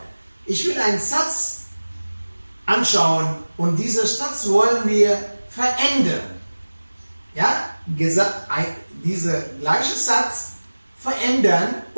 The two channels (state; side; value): inverted; both; correlation -1.00